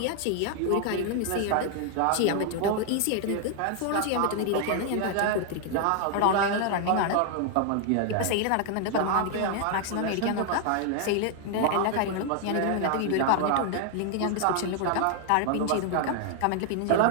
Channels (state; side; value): different; both; correlation 0.00